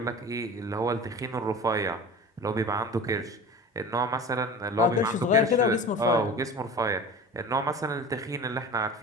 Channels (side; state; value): both; normal; correlation 0.35